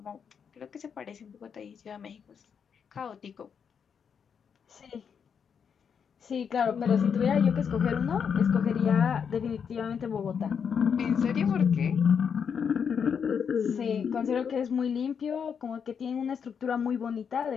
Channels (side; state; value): right; quieter; 7.0 dB